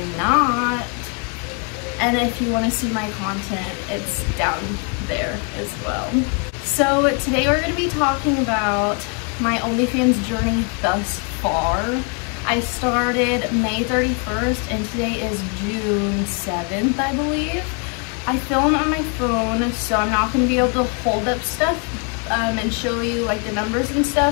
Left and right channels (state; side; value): quieter; right; 36.4 dB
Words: not? And if you want to see my content, it's down there as well. So today we're going to be talking about my OnlyFans journey thus far. I started May 31st and today is June 7th, I believe. I film on my phone, so I'm not going to be able to hold up stuff and show you like the numbers and